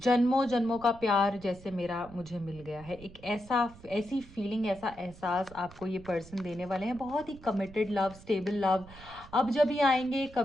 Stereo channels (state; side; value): noise; right; rumble, 20 dB below the sound